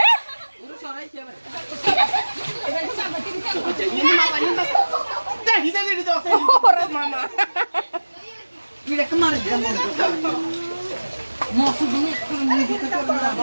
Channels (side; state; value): both; inverted; correlation -1.00